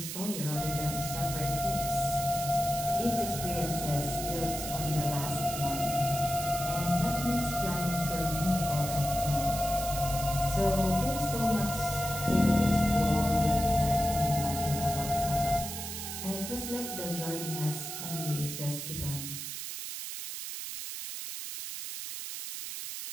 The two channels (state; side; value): noise; right; hiss, 6 dB below the sound